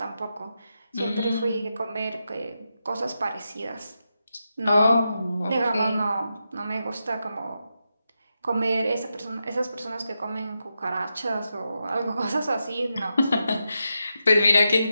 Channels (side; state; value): both; inverted; correlation -0.87